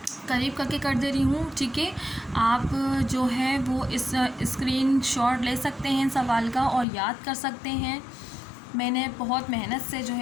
करीब करके कर दे रही हूँ, ठीक है। आप जो है वो इस स्क्रीनशॉट ले सकते हैं सवाल का और याद कर सकते हैं। मैंने बहुत मेहनत से जो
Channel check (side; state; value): right; drops out; at 6.9 s